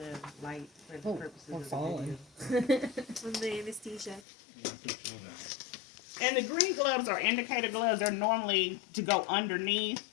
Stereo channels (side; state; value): right; drops out; at 4.2 s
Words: light for the purposes we're of the falling. video. On the anesthesia. And the green gloves are indicator gloves. They're normally to go underneath.